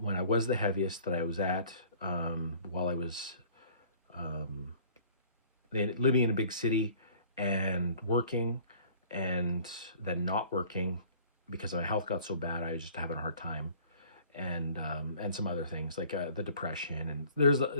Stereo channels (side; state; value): both; inverted; correlation -0.52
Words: when I was the heaviest that I was at while I was living in a big city and working, and then not working because my health got so bad I was just having a hard time, and some other things like the depression, and there's